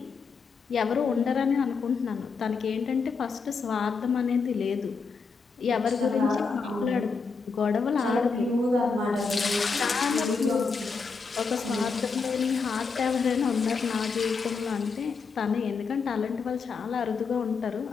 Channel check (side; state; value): right; quieter; 4.9 dB